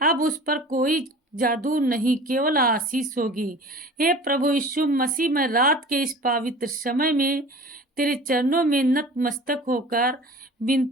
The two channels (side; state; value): both; normal; correlation 0.42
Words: अब उस पर कोई जादू नहीं, केवल आशीष होगी। हे प्रभु यीशु मसीह, मैं रात के इस पवित्र समय में तेरे चरणों में नतमस्तक होकर